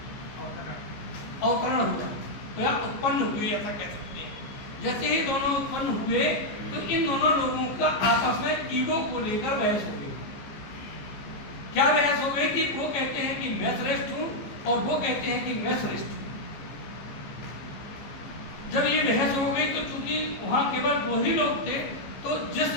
अवतरण हुआ, तो या उत्पन्न हुए ऐसा कह सकते हैं। जैसे ही दोनों उत्पन्न हुए तो इन दोनों लोगों का आपस में ईगो को लेकर बहस हो गई। क्या बहस हो गई कि वो कहते हैं कि मैं श्रेष्ठ हूं और वो कहते हैं कि मैं श्रेष्ठ हूं। जब ये बहस हो गई तो चूंकि वहां केवल वही लोग थे, तो जिस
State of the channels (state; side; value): late; right; 15 ms